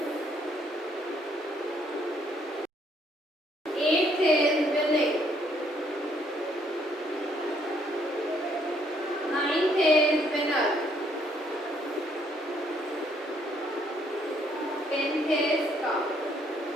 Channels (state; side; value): normal; both; correlation 0.68